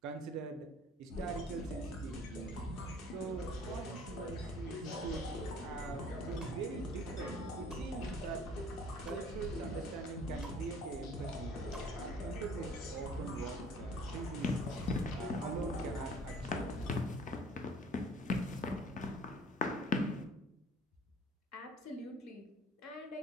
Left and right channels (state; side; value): normal; both; correlation 0.53